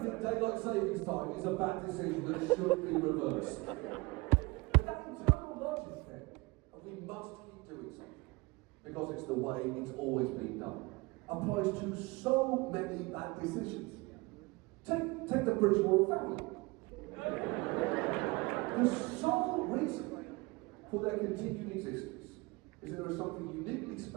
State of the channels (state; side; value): quieter; left; 24.5 dB